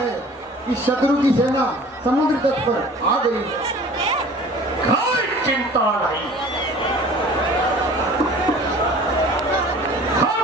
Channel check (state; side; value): normal; both; correlation 0.46